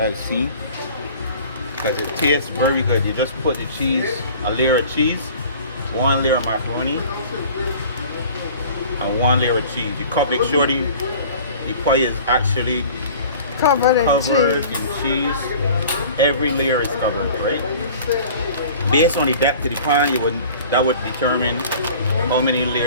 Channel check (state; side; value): inverted; both; correlation -0.44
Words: seen because it tastes very good. You just put the cheese, a layer of cheese, one layer of macaroni, and one layer of cheese. You make sure the pie is actually Covered in covered cheese. in cheese. Every layer is covered, right? Based on the depth of the pan, that would determine how many